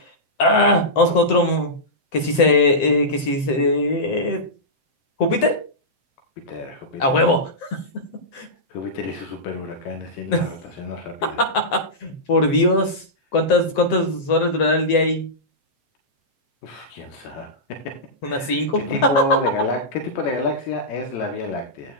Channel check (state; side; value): late; right; 7.7 ms